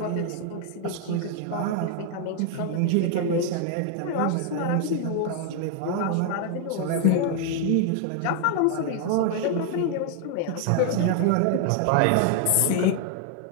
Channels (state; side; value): different; both; correlation 0.00